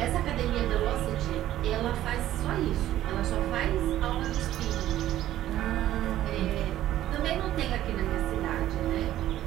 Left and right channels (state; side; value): quieter; left; 13.3 dB